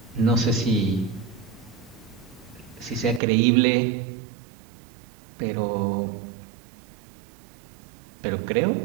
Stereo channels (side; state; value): left; drops out; at 3.2 s